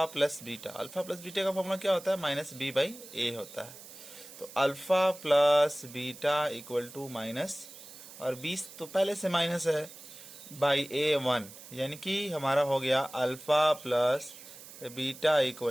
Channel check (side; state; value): right; noise; hiss, 16 dB below the sound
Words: plus beta. Alpha plus beta का फॉर्मूला क्या होता है, -b/a होता है। तो alpha plus beta equal to minus, और 20 तो पहले से माइनस है, बाई a 1, यानी कि हमारा हो गया alpha plus beta